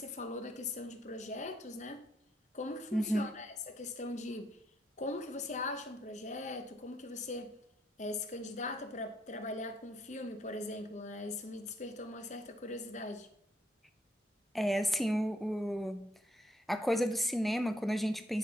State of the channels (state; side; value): normal; both; correlation 0.71